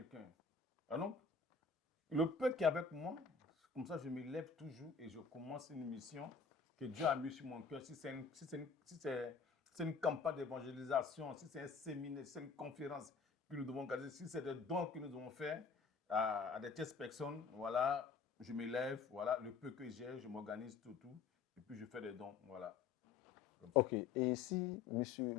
Donc, le peu qui est avec moi, comme ça, je me lève toujours et je commence une mission que Dieu a mis sur mon cœur. Si c'est une campagne d'évangélisation, si c'est un séminaire, si c'est une conférence que nous devons organiser, si c'est des dons que nous devons faire à des tierces personnes, voilà, je me lève, voilà, le peu que j'ai, je m'organise tout, et puis je fais des dons, voilà. Ok, et si M.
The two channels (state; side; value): quieter; right; 5.2 dB